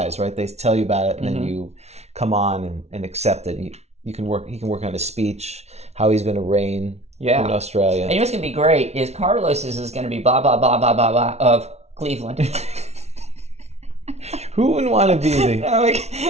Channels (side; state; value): left; late; 0.31 ms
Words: right? They tell you about it, and then you come on and accept it. He can work on a speech, how he's going to reign. Yeah. In Australia. And you know what's going to be great is Carlos's is going to be blah, blah, blah, blah, blah, blah of Cleveland. Who wouldn't want to be the... No,